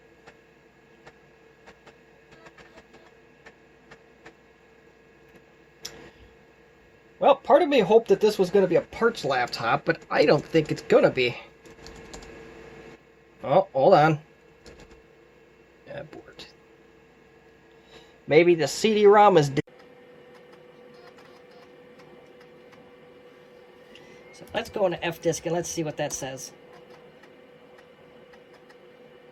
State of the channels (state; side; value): identical; both; correlation 1.00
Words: Well, part of me hoped that this was going to be a parts laptop, but I don't think it's going to be. Oh, hold on. Abort. Maybe the CD-ROM is dead. So let's go into Fdisk and let's see what that says.